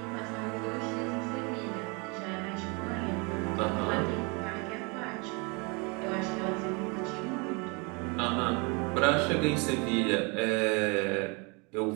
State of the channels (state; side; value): quieter; left; 30.7 dB